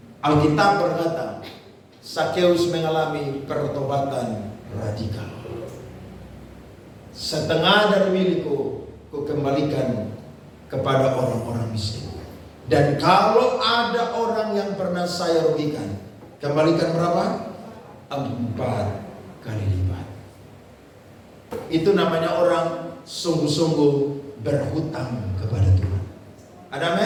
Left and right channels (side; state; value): both; identical; correlation 1.00